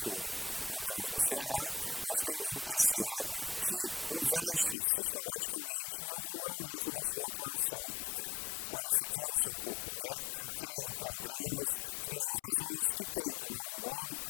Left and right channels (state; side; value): drops out; right; at 4.8 s